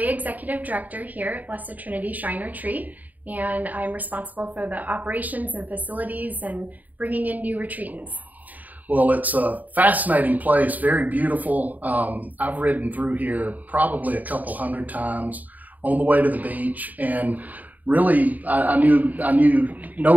executive director here at Blessed Trinity Shrine Retreat, and I'm responsible for the operations and facilities and bringing in new retreatants. Well, it's a fascinating place, very beautiful. I've ridden through here probably a couple hundred times on the way to the beach, and really I knew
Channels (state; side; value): late; left; 0.079 ms